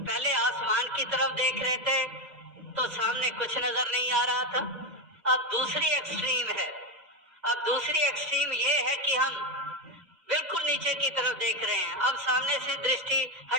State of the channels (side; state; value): left; late; 2.0 ms